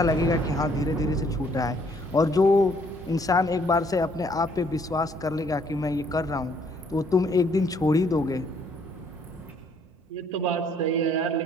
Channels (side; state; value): both; normal; correlation 0.64